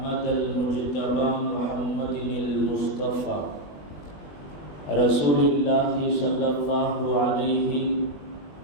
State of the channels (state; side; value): late; right; 20 ms